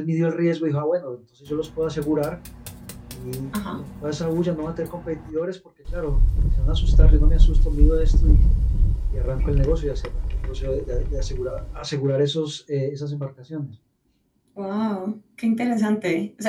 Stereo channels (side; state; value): both; identical; correlation 1.00